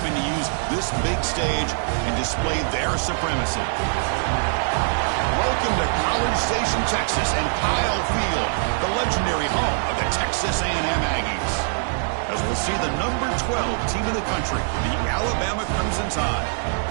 to use this big stage and display their supremacy. Welcome to College Station, Texas, and Kyle Field, the legendary home of the Texas A&M Aggies. As we'll see the number 12 team in the country, the Alabama Crimson Tide,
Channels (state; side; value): silent; left; digital silence